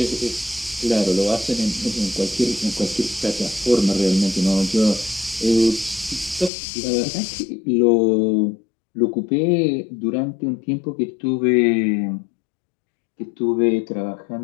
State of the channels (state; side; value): drops out; right; at 6.5 s